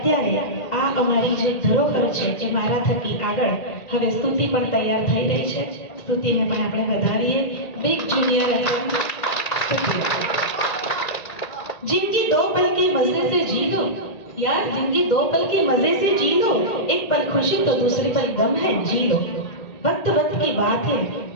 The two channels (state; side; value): late; right; 1.9 ms